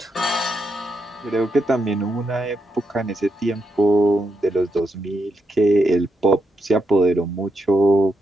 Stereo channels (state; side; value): normal; both; correlation 0.83